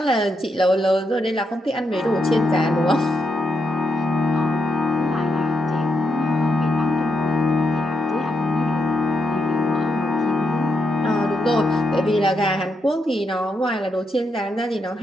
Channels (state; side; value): normal; both; correlation 0.82